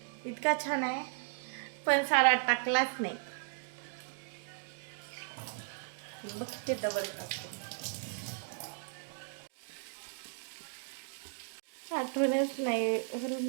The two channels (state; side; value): silent; left; digital silence